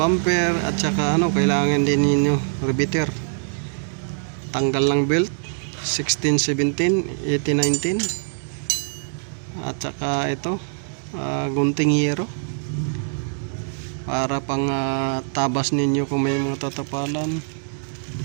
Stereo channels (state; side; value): silent; left; digital silence